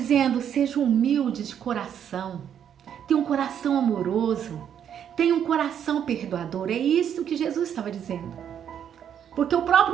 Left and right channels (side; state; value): left; quieter; 9.0 dB